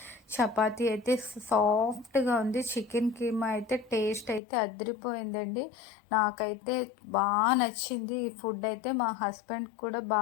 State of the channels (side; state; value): right; drops out; at 4.4 s